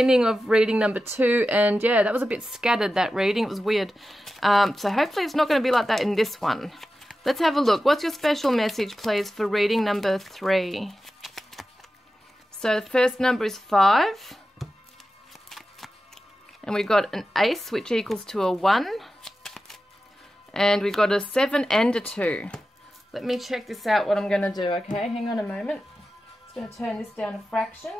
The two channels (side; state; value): both; normal; correlation 0.93